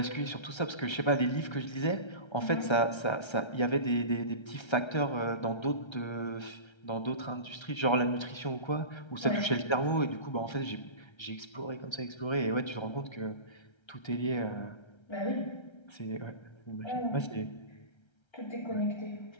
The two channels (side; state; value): right; late; 1.3 ms